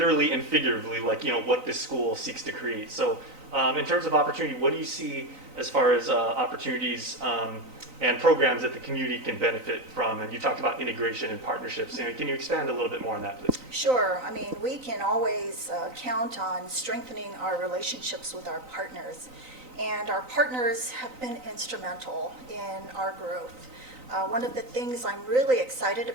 and figuratively like, you know, what this school seeks to create. So in terms of opportunity, what do you see as far as opportunities and programs that the community can benefit from? And you talked about integration and partnerships. You know, can you expand a little bit more on that, please? Sure. I mean, we can always count on strengthening our relationships with our partners. And our partners have been instrumental in our growth. One of the things I'm really excited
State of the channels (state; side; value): late; left; 3.9 ms